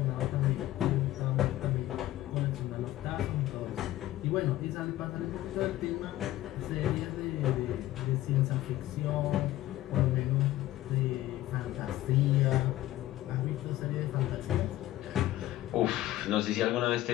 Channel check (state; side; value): quieter; right; 15.2 dB